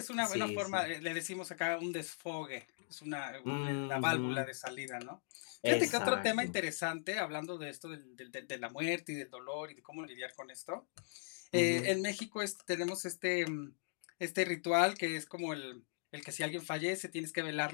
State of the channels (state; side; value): silent; right; digital silence